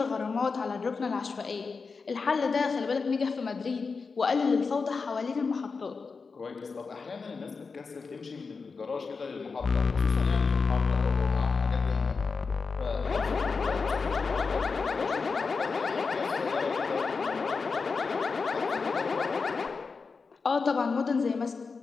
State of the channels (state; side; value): quieter; right; 4.7 dB